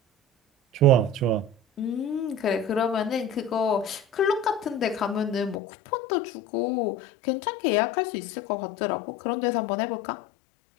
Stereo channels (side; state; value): right; drops out; at 5.6 s